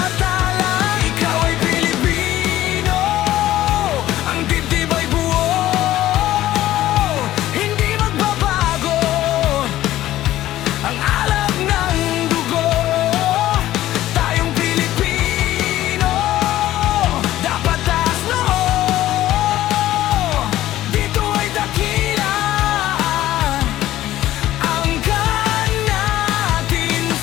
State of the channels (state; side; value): quieter; right; 14.3 dB